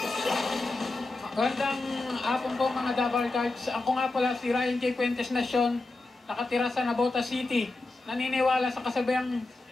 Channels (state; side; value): quieter; right; 3.1 dB